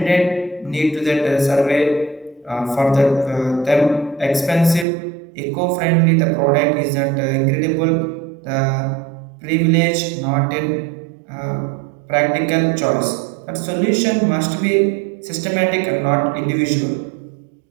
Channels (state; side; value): drops out; left; at 4.9 s